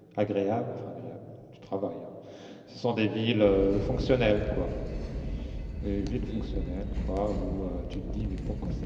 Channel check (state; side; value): identical; both; correlation 1.00